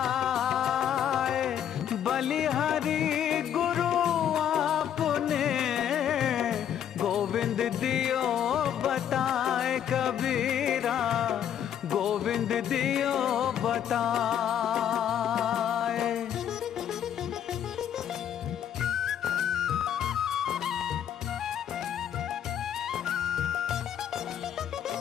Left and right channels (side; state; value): right; quieter; 9.6 dB